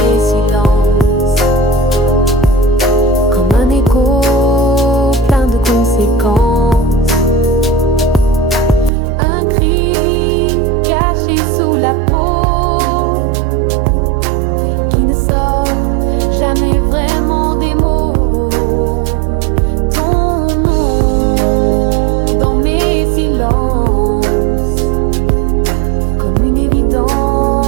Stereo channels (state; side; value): drops out; left; at 8.9 s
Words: silences, comme un écho plein de conséquences, un cri caché sous la peau qui ne sort jamais vraiment des mots. Ton nom dans mes silences, comme une